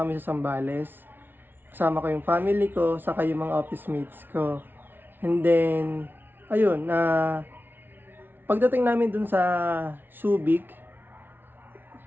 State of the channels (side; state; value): left; late; 0.099 ms